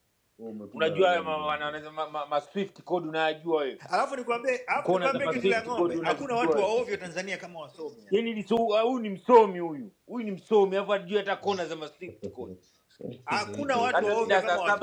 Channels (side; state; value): both; identical; correlation 1.00